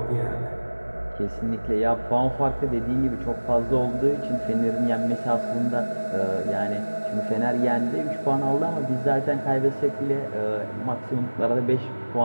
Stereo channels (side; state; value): both; inverted; correlation -1.00